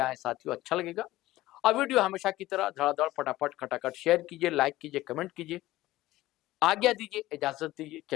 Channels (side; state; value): right; quieter; 16.8 dB